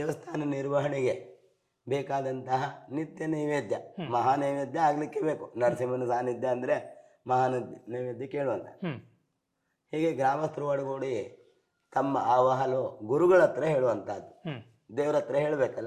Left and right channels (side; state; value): both; identical; correlation 1.00